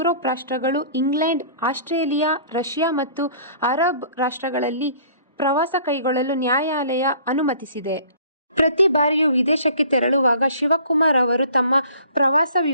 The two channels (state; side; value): inverted; both; correlation -0.51